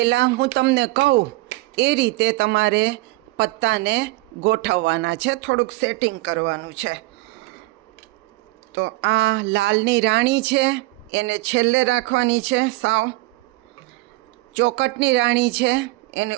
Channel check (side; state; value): left; quieter; 21.2 dB